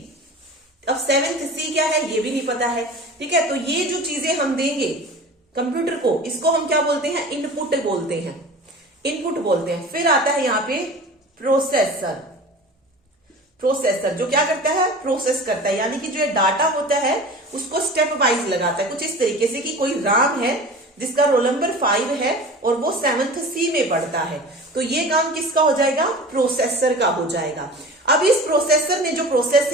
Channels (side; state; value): both; normal; correlation 0.37